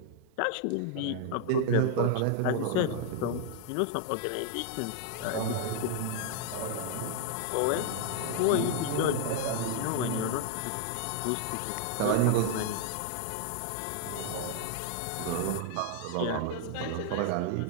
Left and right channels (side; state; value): both; different; correlation 0.00